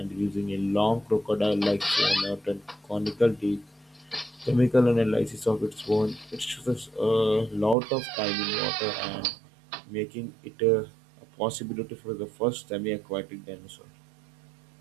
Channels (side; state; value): left; drops out; at 7.8 s